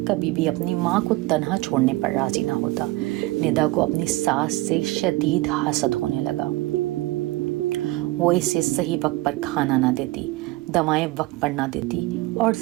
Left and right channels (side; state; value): left; quieter; 19.8 dB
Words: کبھی بھی اپنی ماں کو تنہا چھوڑنے پر راضی نہ ہوتا۔ ندا کو اپنی ساس سے شدید حسد ہونے لگا۔ وہ اسے صحیح وقت پر کھانا نہ دیتی، دوائیں وقت پر نہ دیتی اور